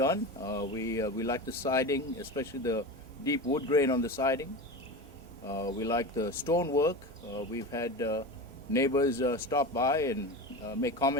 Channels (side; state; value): both; normal; correlation 0.26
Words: We like the siding, especially the deep wood grain on the siding. We like the stone work. We've had neighbors stop by and make